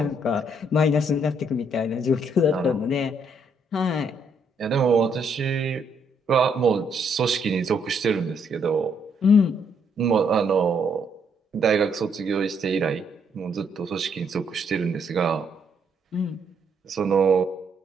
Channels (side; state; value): both; normal; correlation 0.71